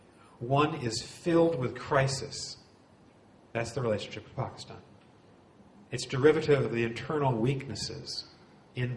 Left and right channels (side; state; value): both; identical; correlation 1.00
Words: One is filled with crisis. That's the relationship with Pakistan. It's derivative of the internal weaknesses in